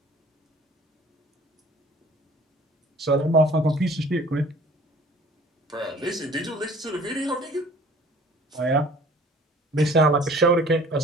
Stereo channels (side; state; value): both; normal; correlation 0.50